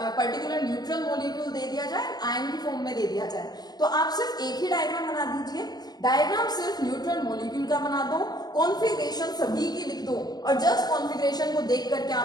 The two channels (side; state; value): right; late; 0.20 ms